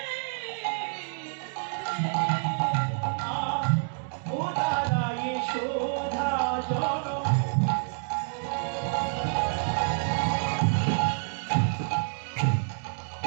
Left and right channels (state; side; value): silent; left; digital silence